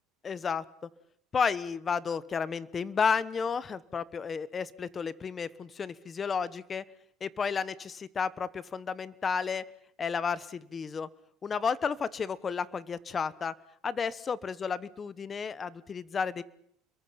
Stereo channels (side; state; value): right; quieter; 5.6 dB